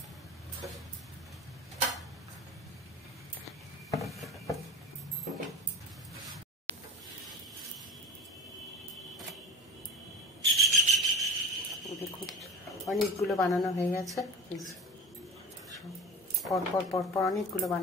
দেখুন অনেকগুলো বানানো হয়ে গেছে। পরপর পরপর অনেকগুলো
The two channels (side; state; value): both; normal; correlation 0.34